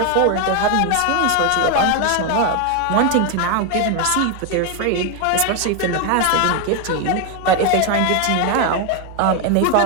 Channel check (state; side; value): different; both; correlation 0.01